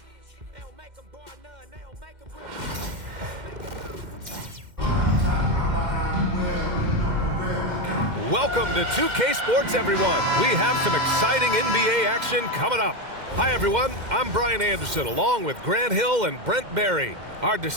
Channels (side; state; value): left; late; 2.1 ms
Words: They don't make them bar none, they don't make them real. Welcome to 2K Sports, everyone. We have some exciting NBA action coming up. Hi, everyone. I'm Brian Anderson, along with Grant Hill and Brent Barry, our